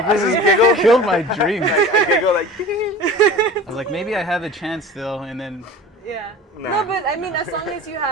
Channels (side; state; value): both; normal; correlation 0.38